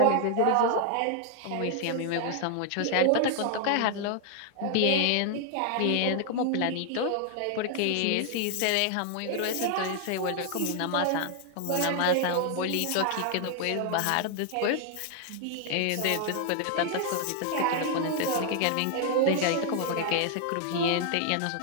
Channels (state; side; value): different; both; correlation 0.00